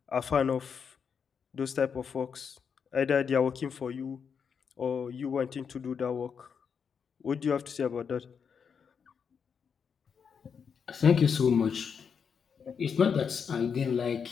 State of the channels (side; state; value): right; quieter; 6.6 dB